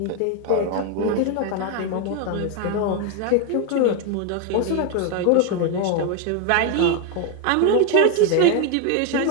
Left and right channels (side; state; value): both; different; correlation 0.01